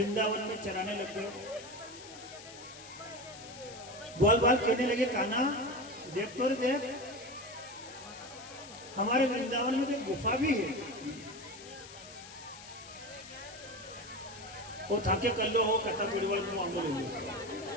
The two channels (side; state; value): left; noise; hiss, 16 dB below the sound